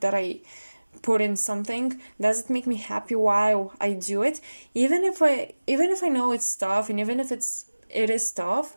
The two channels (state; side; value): inverted; both; correlation -1.00